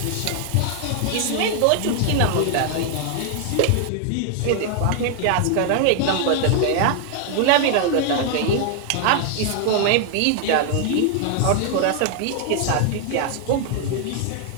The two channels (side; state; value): both; different; correlation 0.00